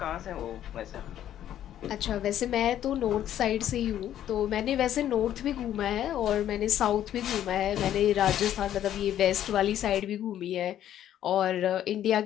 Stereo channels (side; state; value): right; quieter; 11.3 dB